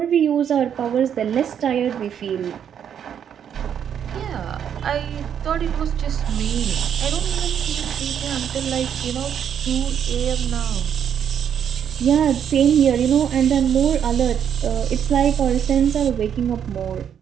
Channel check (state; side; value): quieter; left; 8.6 dB